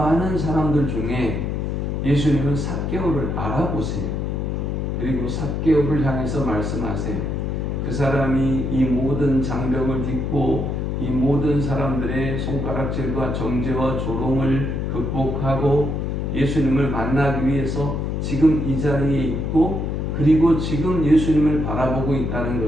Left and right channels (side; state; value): left; noise; hum, 1 dB below the sound